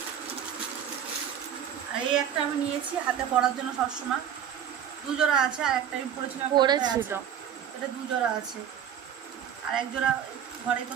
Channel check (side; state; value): left; quieter; 9.0 dB